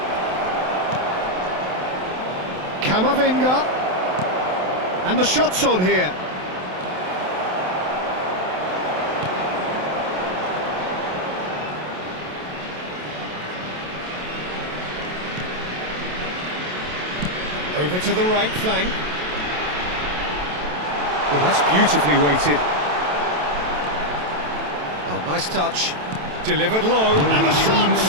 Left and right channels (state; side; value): late; left; 27 ms